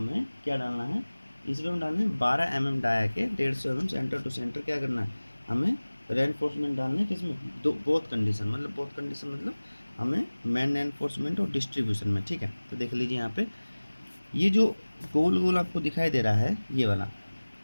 क्या डालना है, इसमें हम डालना है 12 mm डाया के 150 mm सेंटर टू सेंटर क्या करना है, हमें रेनफोर्समेंट डालना है। किसमें, दो बोथ कंडीशन, मतलब बोथ कंडीशन मतलब हमें मेन रेनफोर्समेंट और डिस्ट्रीब्यूशन में, ठीक है। तो देख लीजिए यहाँ पे ये जो गोल गोल आपको दिखाई दे रहा है, ये वाला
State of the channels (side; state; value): both; inverted; correlation -1.00